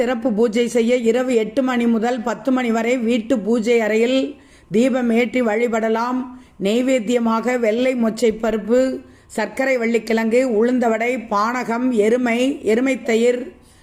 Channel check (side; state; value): both; identical; correlation 1.00